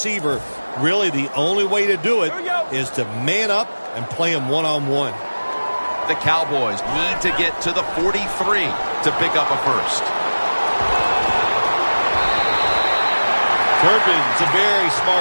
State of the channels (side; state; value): both; inverted; correlation -1.00